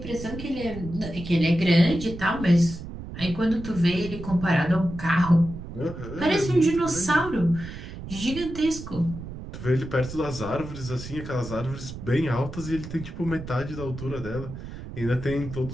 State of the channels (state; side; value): noise; right; rumble, 10 dB below the sound